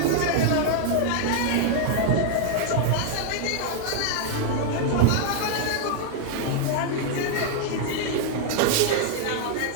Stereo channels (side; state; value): both; different; correlation 0.00